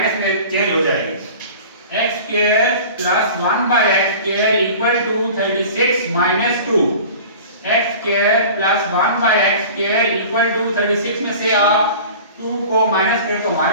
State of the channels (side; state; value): both; inverted; correlation -0.40